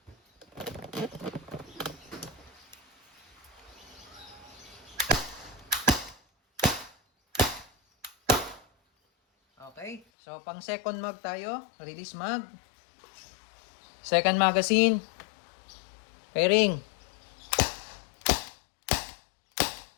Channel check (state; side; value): drops out; right; at 10.0 s